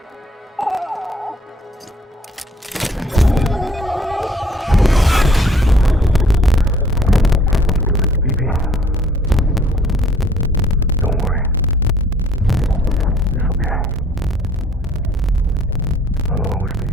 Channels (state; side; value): normal; both; correlation 0.58